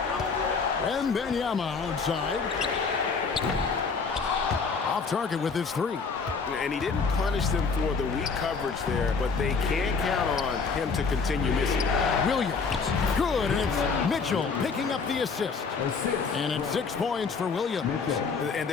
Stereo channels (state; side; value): quieter; right; 5.0 dB